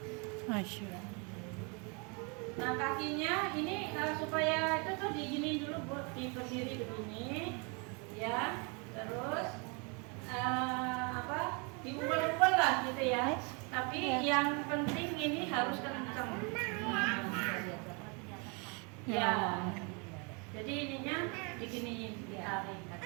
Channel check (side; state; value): left; quieter; 33.0 dB